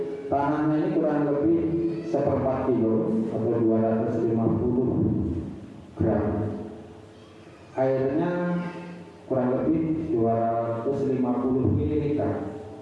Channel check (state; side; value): identical; both; correlation 1.00